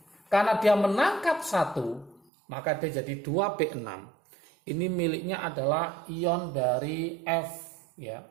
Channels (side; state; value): left; drops out; at 2.2 s